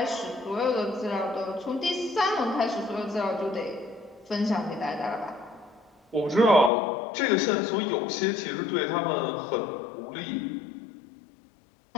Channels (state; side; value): drops out; right; at 6.7 s